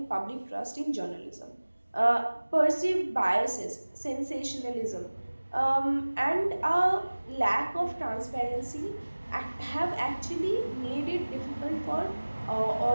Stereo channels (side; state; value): both; inverted; correlation -1.00